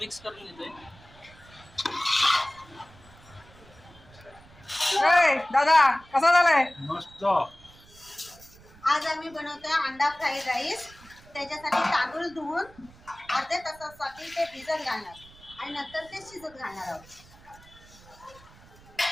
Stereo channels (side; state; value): right; noise; rumble, 23 dB below the sound